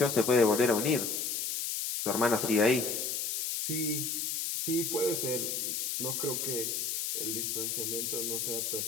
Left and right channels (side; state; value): left; noise; hiss, 1 dB below the sound